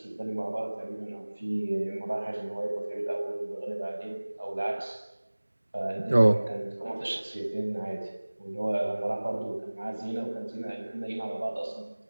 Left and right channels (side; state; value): both; inverted; correlation -1.00